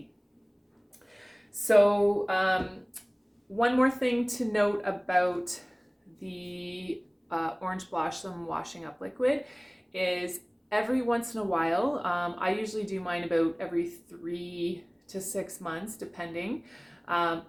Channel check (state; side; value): identical; both; correlation 1.00